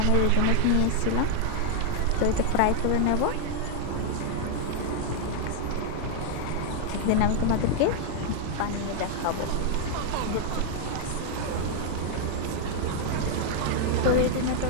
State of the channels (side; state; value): both; different; correlation 0.00